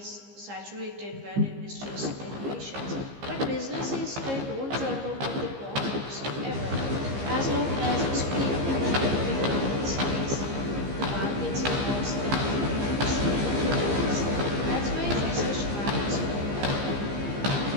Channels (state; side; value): late; left; 15 ms